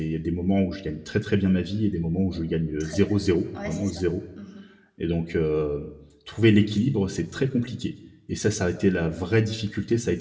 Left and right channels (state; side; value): identical; both; correlation 1.00